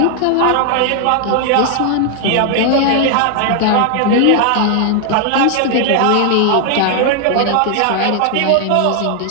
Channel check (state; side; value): different; both; correlation 0.00